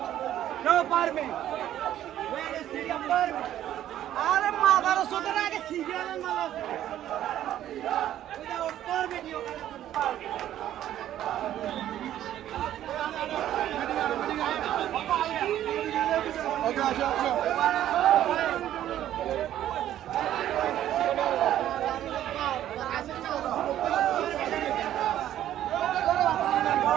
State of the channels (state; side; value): quieter; left; 12.0 dB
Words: No permit. Where is the permit? अरे मागारा सोचना है कि सीरियल में मागा without permit you